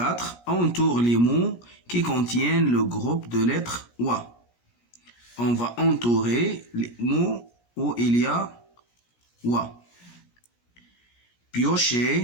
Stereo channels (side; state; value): right; late; 17 ms